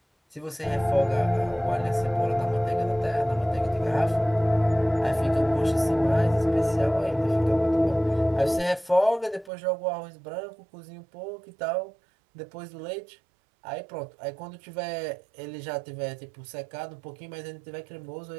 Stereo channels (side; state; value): left; drops out; at 9.5 s